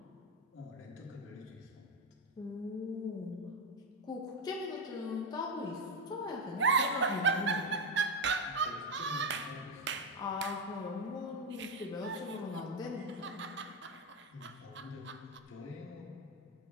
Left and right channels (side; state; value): both; normal; correlation 0.09